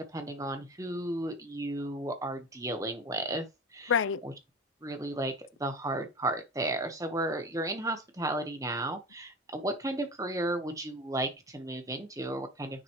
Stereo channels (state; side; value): normal; both; correlation 0.31